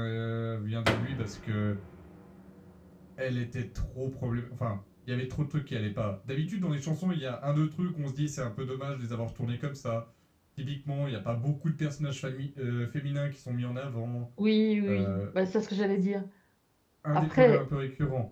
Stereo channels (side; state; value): both; identical; correlation 1.00